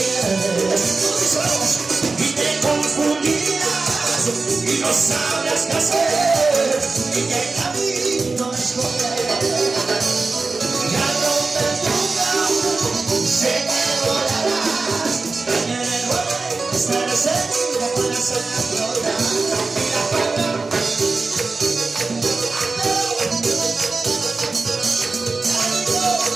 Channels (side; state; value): left; quieter; 3.9 dB